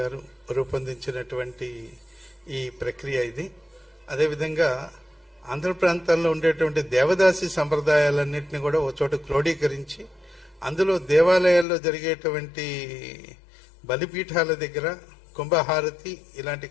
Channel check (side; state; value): right; drops out; at 11.7 s